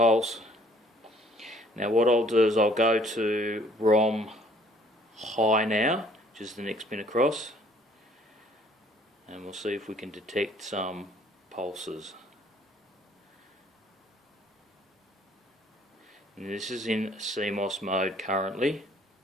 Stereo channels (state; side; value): normal; both; correlation 0.59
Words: Now what I'll do is I'll go to ROM high now, which is the next pin across, and we'll see if we can detect some pulses. And this is in CMOS mode currently,